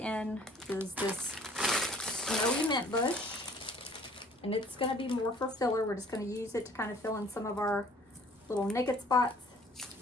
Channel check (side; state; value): both; normal; correlation 0.56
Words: is this snowy mint bush. And it's going to be more for filler. We're just going to use it to kind of fill in some of our little naked spots,